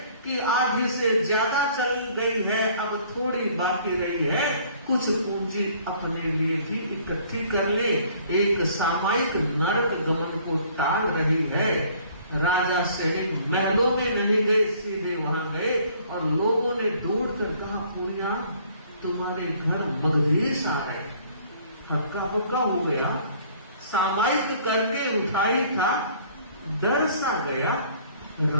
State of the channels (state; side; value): inverted; both; correlation -0.57